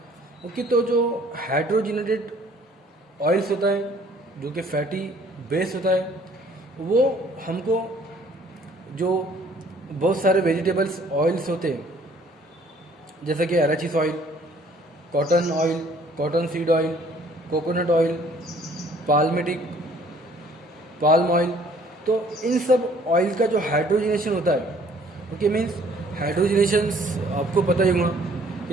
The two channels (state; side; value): normal; both; correlation 0.58